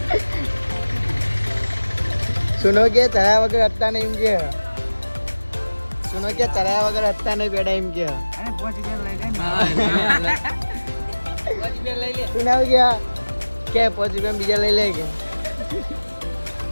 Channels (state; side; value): inverted; both; correlation -1.00